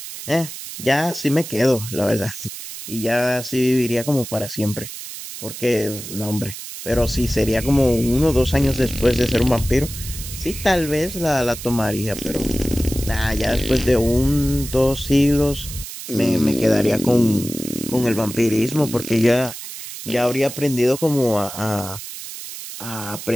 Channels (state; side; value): noise; right; hiss, 10 dB below the sound